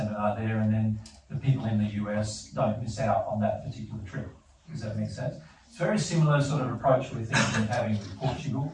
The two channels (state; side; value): identical; both; correlation 1.00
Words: there, and then the people in the US don't miss out on that particular trip. Does that make sense? It's a very similar sort of approach we're thinking of having with Portugal,